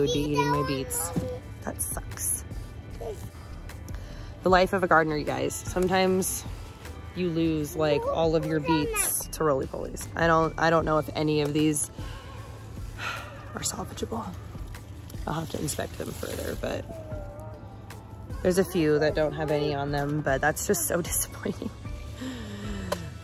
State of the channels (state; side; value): identical; both; correlation 1.00